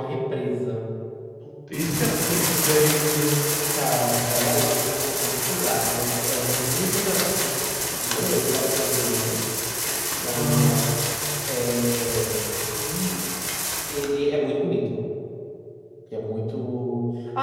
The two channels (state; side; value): identical; both; correlation 1.00